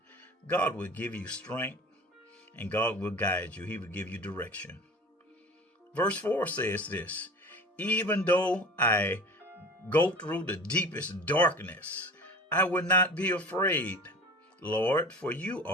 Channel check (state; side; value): normal; both; correlation 0.38